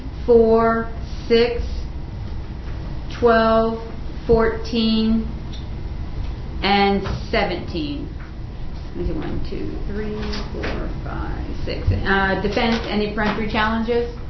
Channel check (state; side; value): identical; both; correlation 1.00